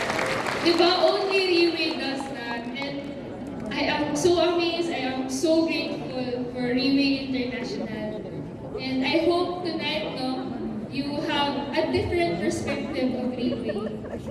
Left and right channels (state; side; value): identical; both; correlation 1.00